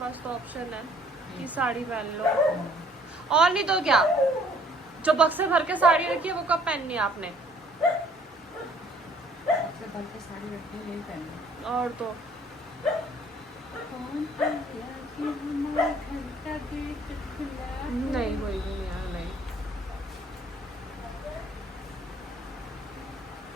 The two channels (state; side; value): normal; both; correlation 0.58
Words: तो ऑप्शन है कि साड़ी पहन लो। और नहीं तो क्या, जो बक्से भर के साड़ी रखी है वो कब पहननी है आपने? सबसे भर के साड़ी रखी है, यही पहननी। और तो नहीं कोई भी नहीं यार, नहीं।